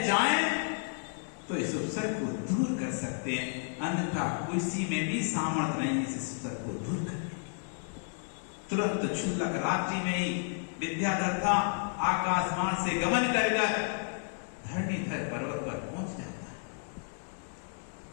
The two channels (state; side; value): silent; right; 56 dB below the other